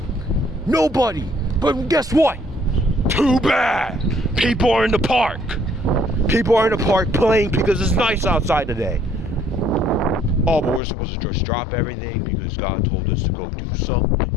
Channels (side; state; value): right; drops out; at 10.8 s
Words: Nobody. But guess what? Too bad. People are in the park. People are in the park playing because it's nice outside today. All we're supposed to just drop everything because God told us to go do